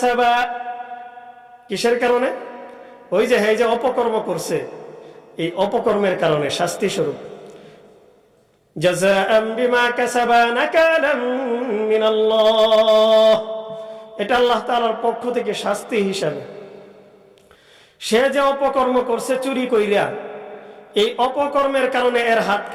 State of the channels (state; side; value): identical; both; correlation 1.00